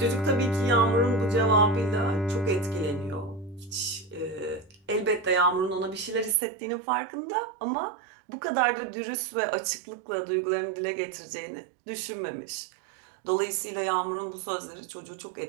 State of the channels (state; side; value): drops out; left; at 6.4 s